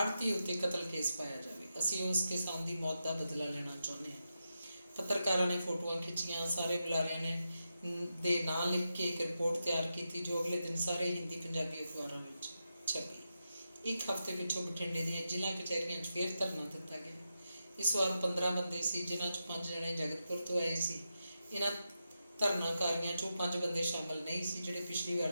उत्ते कतल केस पाया जाए। असीं उस किसान की मौत का बदला लेना चाहुंदे हां। पत्रकारों ने फोटोआं खिंचियां, सारे बुलारियां ने दे नां लिख के एक रिपोर्ट तैयार की जो अगले दिन सारे हिंदी पंजाबी अखबारों में छपी। एक हफ्ते पिछों बठिंडे दी जिला कचहरियां फिर धरना दिता गया। इस बार 15 बंदे सी, जिन्हां चों 5 जने जगतपुर तो आए सी। इन्हां धरनाकारियों चों 5 बंदे शामिल नहीं सी जिहड़े पिछली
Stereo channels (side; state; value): both; inverted; correlation -0.88